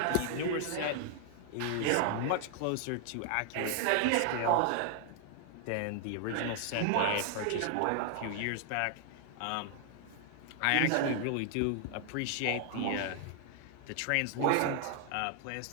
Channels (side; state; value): both; different; correlation 0.00